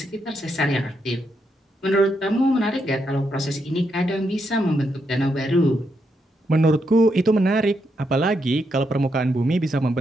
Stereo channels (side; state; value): both; normal; correlation 0.80